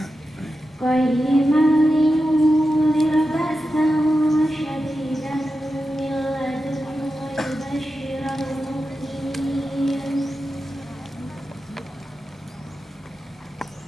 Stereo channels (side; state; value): both; normal; correlation 0.91